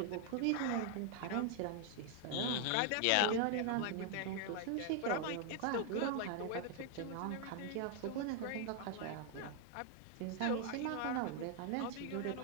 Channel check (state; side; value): different; both; correlation 0.00